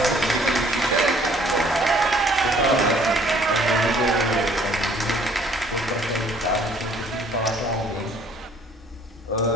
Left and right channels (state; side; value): normal; both; correlation 0.58